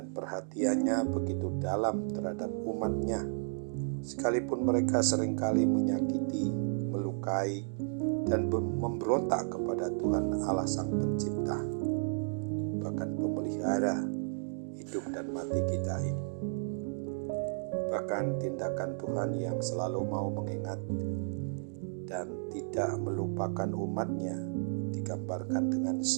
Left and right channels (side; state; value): left; silent; digital silence